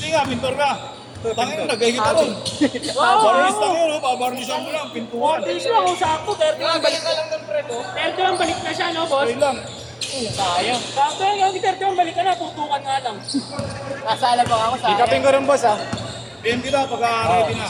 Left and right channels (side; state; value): both; identical; correlation 1.00